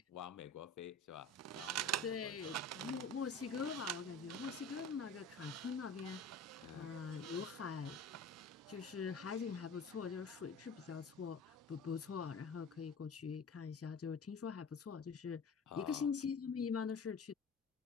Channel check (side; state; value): right; quieter; 3.1 dB